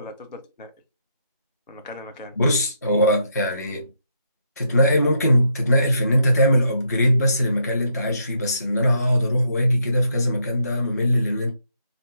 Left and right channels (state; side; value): inverted; both; correlation -0.76